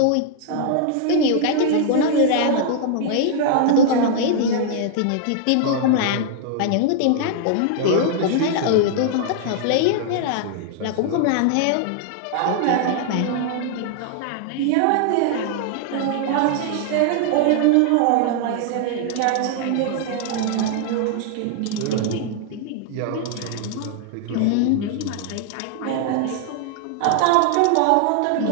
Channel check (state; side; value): different; both; correlation -0.01